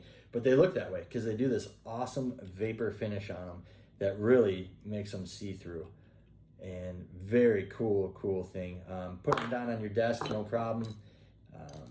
but they look that way because they do this awesome vapor finish on them that really makes them see-through. And very cool thing. Putting them down on your desk, no problem.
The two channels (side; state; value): both; identical; correlation 1.00